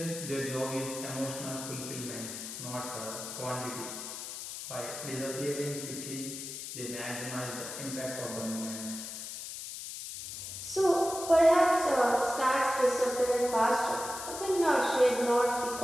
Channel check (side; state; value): left; noise; hiss, 8 dB below the sound